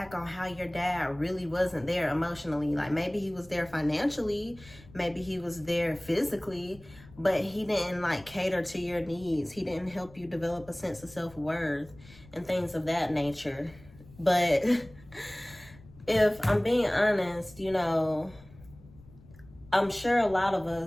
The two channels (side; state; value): left; noise; rumble, 22 dB below the sound